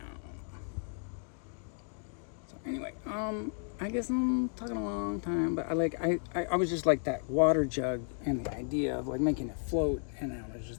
So anyway, I guess I'm talking a long time, but I was just like that water jug and the idea of like making it float, and I was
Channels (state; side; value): silent; right; 55 dB below the other